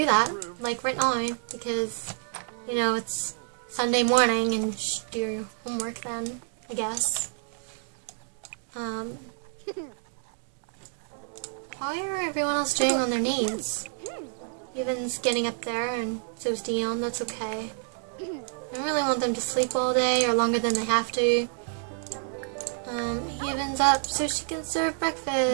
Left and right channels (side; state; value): left; silent; digital silence